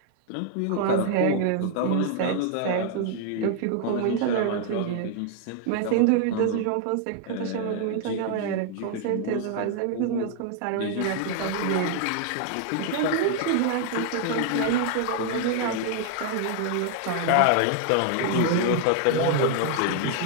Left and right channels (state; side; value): different; both; correlation 0.00